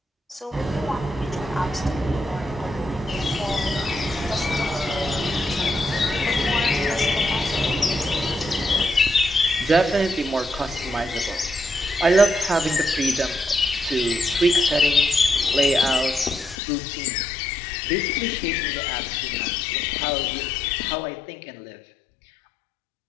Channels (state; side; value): drops out; right; at 16.6 s